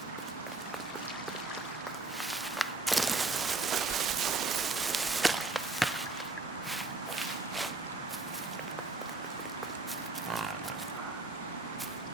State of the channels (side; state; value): left; quieter; 3.5 dB